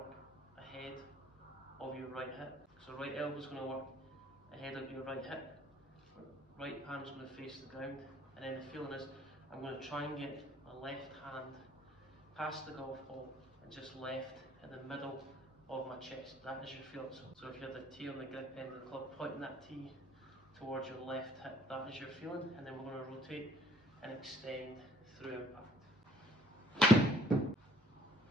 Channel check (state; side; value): normal; both; correlation 0.59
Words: ahead of your right hip. So right elbow is going to work ahead of your right hip. Right palm is going to face the ground, and then the feeling is I'm going to try and get my left hand past the golf ball and just left in the middle of my chest. That is your feeling. So if you have the tee on the grip end of the club, pointing that tee towards your left hip, that is your feeling, and then we're going to rotate and extend through impact.